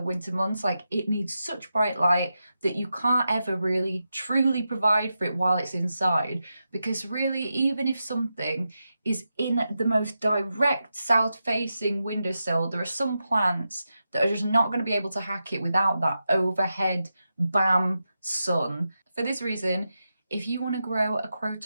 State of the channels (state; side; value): inverted; both; correlation -0.89